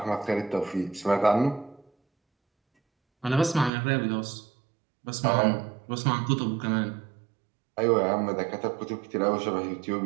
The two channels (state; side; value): drops out; left; at 3.7 s